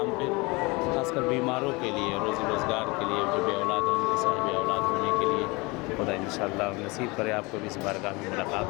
پہ، خاص کر بیماروں کے لیے، روزی روزگار کے لیے، جو بے اولاد ہیں ان کے صاحب اولاد ہونے کے لیے خدا انشاءاللہ نصیب کرے آپ کو بھی اس بارگاہ میں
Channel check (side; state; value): right; quieter; 25.6 dB